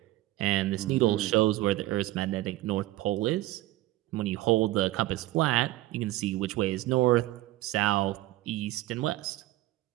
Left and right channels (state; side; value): quieter; left; 16.6 dB